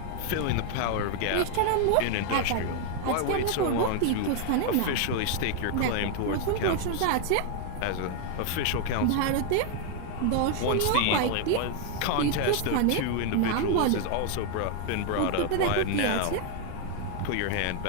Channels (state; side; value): different; both; correlation 0.00